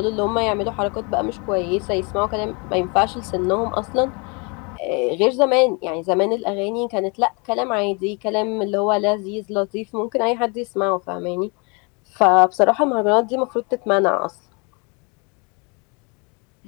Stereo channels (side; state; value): right; quieter; 31.6 dB